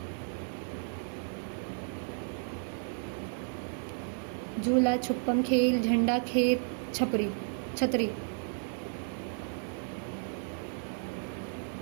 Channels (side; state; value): left; silent; 56 dB below the other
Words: झूला, छुपम खेल, झंडा खेल, छतरी।